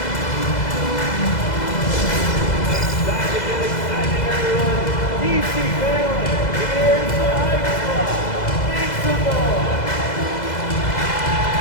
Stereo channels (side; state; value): right; late; 2.0 ms